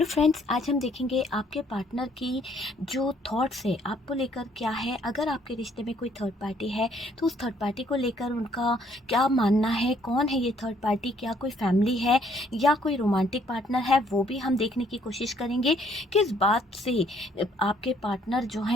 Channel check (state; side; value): normal; both; correlation 0.65